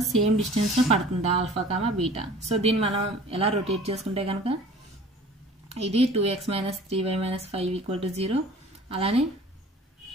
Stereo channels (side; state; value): both; normal; correlation 0.46